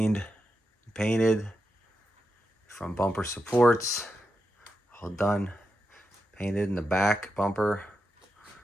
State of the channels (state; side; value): normal; both; correlation 0.87